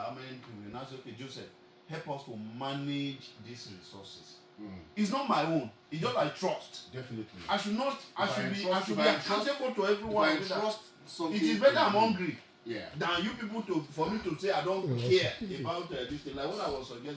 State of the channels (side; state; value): both; identical; correlation 1.00